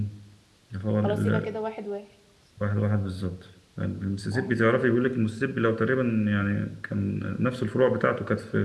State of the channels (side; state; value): both; identical; correlation 1.00